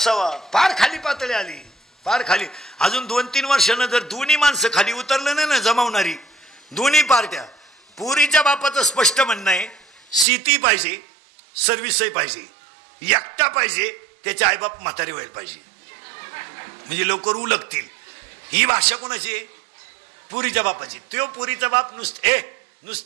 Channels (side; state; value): left; drops out; at 10.2 s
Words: फार खाली पातळी आली फार खाली अजून 2-3 वर्षानं जर दोन्ही माणसं खाली उतरलं नाही ना जमावणारी दोन्ही पार्ट्या पोरीच्या बापाचं स्पष्ट म्हणणं आहे शेती पाहिजे सर्व्हिसही पाहिजे एकटा पाहिजे त्याचे आईबाप म्हातारे व्हायला पाहिजे म्हणजे लवकर उलगतील ही भाषा कोणाची आहे पुरीच्या बापाची तो पुरीचा बाप